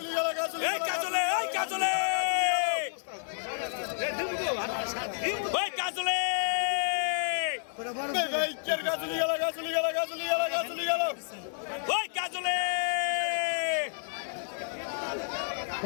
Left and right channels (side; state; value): right; silent; digital silence